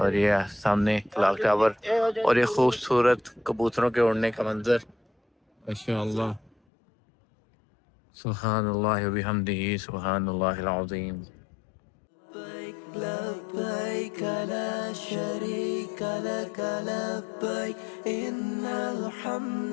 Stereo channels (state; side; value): drops out; right; at 6.5 s